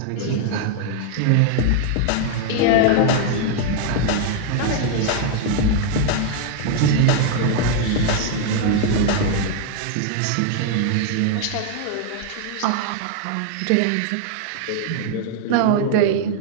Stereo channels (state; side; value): different; both; correlation 0.00